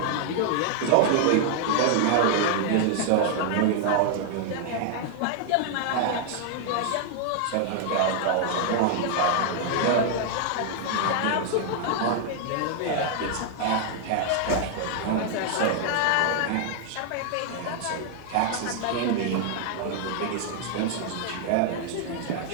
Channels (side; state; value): both; different; correlation 0.00